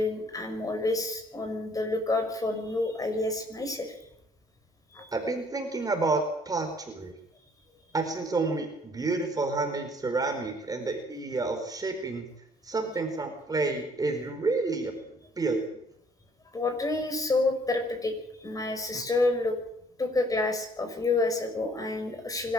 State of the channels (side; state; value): both; normal; correlation 0.60